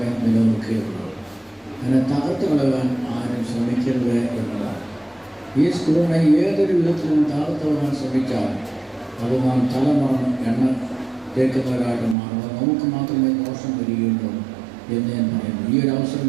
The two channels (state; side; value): drops out; left; at 12.2 s